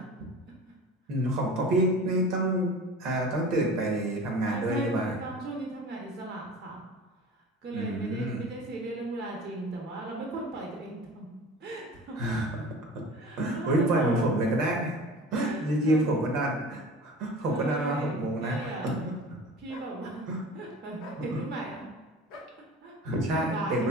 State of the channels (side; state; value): both; normal; correlation 0.39